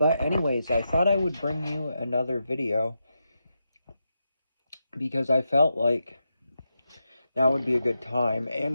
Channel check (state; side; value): inverted; both; correlation -0.86